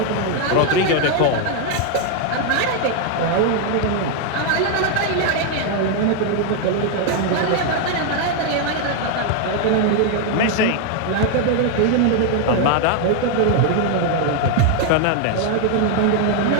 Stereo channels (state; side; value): different; both; correlation 0.01